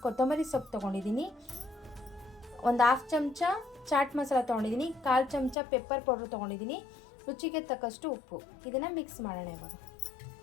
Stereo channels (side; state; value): right; drops out; at 5.6 s